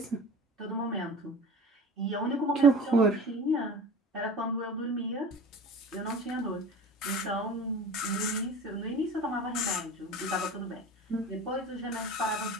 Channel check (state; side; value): normal; both; correlation 0.38